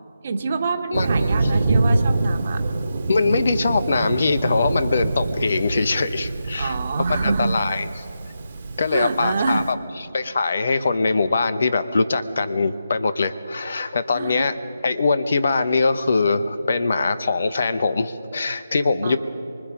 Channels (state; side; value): inverted; both; correlation -0.87